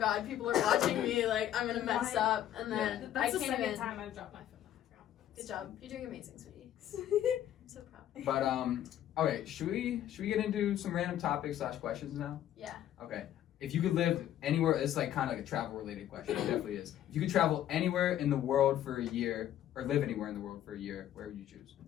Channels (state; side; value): quieter; right; 11.6 dB